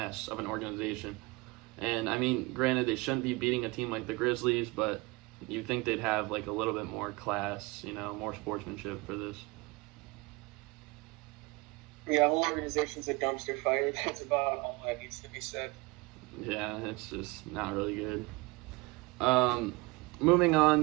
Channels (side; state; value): left; quieter; 24.4 dB